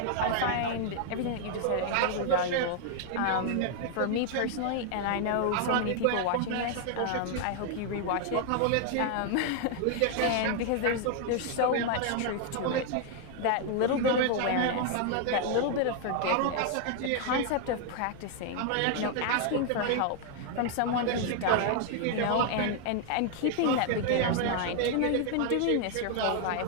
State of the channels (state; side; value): different; both; correlation 0.00